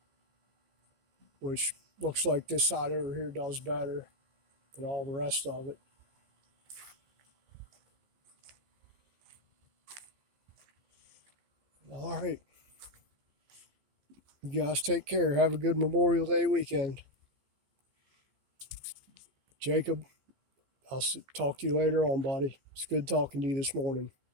which looks like this side over here does better than all the rest of it. All right. You guys take care. Have a good Memorial Day weekend. Jacob, I'll talk to you later on, buddy. It's good talking to you this morning.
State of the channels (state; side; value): late; left; 15 ms